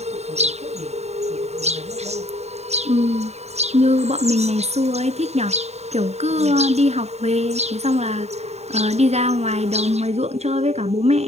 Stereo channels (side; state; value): left; late; 0.31 ms